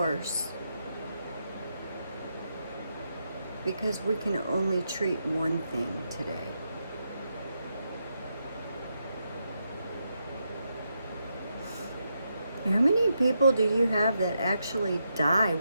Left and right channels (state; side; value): inverted; both; correlation -0.83